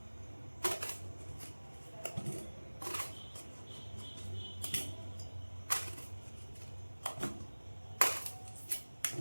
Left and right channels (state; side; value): inverted; both; correlation -1.00